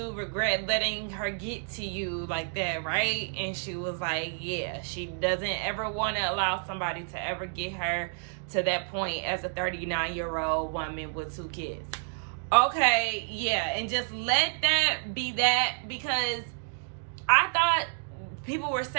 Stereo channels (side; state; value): left; silent; 58 dB below the other